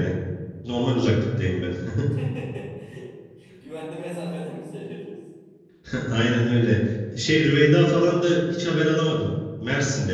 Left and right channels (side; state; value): both; identical; correlation 1.00